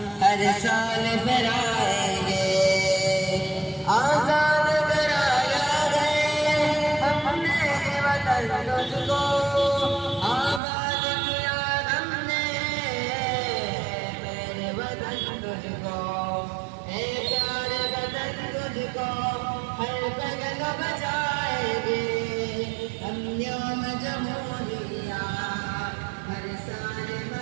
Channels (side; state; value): left; drops out; at 10.6 s